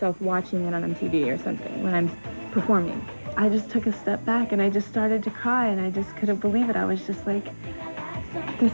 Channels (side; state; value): both; inverted; correlation -1.00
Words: watching it on TV or something when I'm performing. I just took a step back and I just started to cry and I just couldn't believe it. I was just like,